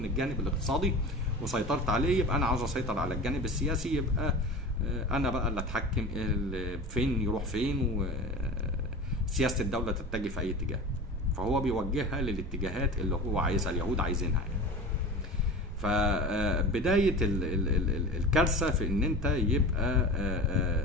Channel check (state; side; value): normal; both; correlation 0.33